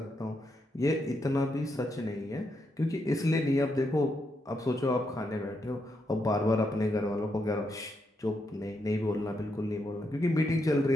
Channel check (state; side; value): normal; both; correlation 0.81